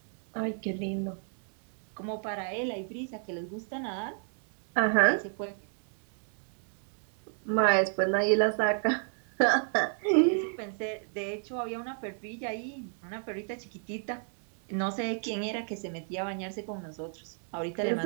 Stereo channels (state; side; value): silent; left; 56 dB below the other